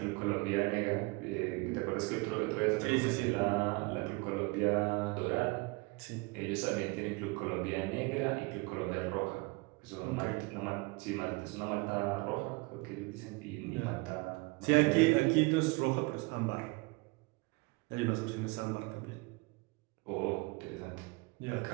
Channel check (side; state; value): left; quieter; 26.8 dB